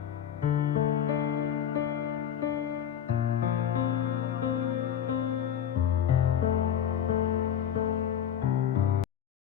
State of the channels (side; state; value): right; quieter; 9.4 dB